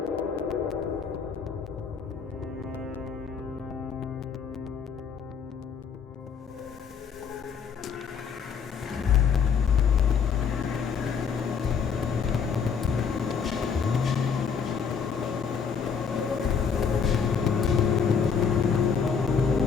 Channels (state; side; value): quieter; right; 6.4 dB